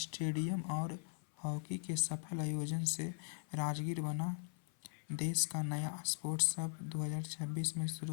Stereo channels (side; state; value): right; silent; 51 dB below the other